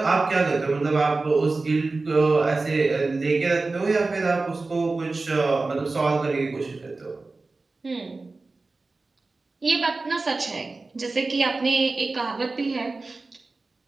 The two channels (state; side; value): quieter; left; 3.6 dB